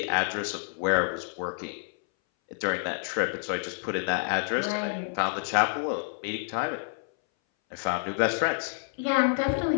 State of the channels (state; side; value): silent; right; 59 dB below the other